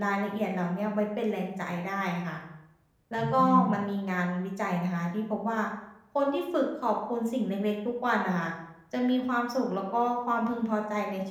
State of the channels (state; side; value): identical; both; correlation 1.00